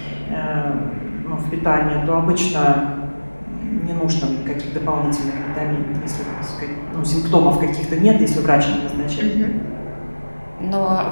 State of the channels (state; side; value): inverted; both; correlation -1.00